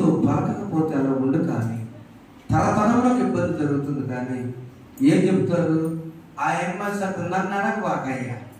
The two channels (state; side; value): identical; both; correlation 1.00